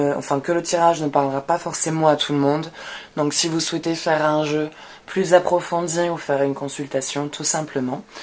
parlera pas forcément à tout le monde. Donc si vous souhaitez faire un jeu plus approfondi ou faire une consultation tout simplement,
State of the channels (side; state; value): both; identical; correlation 1.00